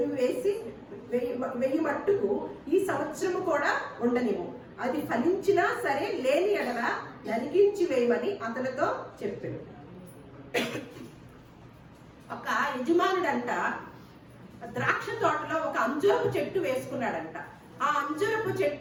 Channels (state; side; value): identical; both; correlation 1.00